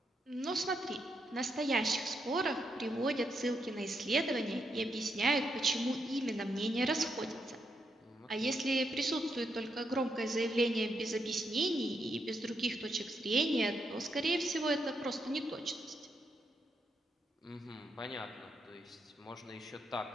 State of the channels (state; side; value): normal; both; correlation 0.80